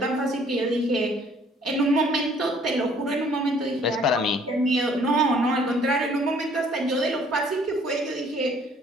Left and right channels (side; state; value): both; normal; correlation 0.59